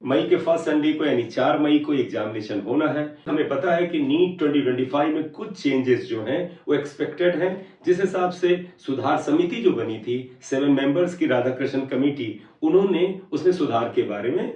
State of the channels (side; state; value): both; identical; correlation 1.00